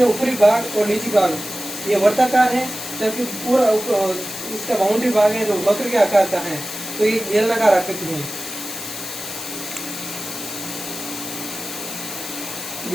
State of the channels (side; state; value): left; noise; hiss, 8 dB below the sound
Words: ऊपरी भाग और निचली भाग ये वर्ताकार है, जबकि पूरा इसका बाउंड्री भाग है जो वक्र के आकार का है, तो ये बेलनाकार आकृति है।